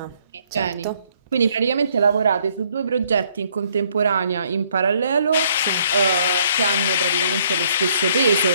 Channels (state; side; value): inverted; both; correlation -0.66